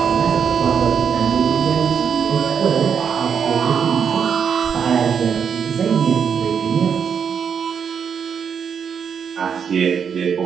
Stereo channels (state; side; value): quieter; left; 7.1 dB